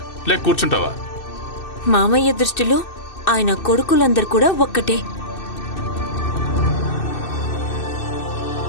లేక కూర్చుంటావా? మామయ్య దృష్టిలో ఆయన కొడుకులందరూ కూడా ఒక్కటే.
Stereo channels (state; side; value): late; right; 2.6 ms